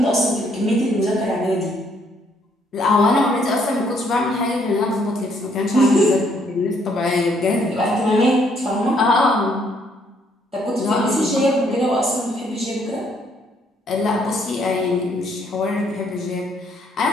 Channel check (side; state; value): both; normal; correlation 0.68